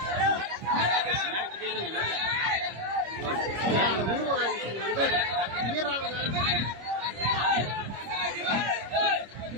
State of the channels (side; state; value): left; late; 25 ms